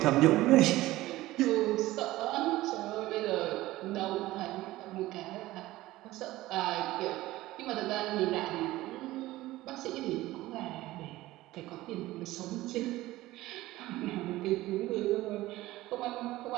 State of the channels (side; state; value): left; quieter; 17.2 dB